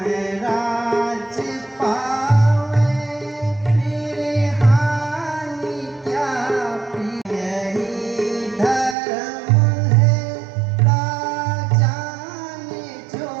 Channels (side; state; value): left; drops out; at 9.0 s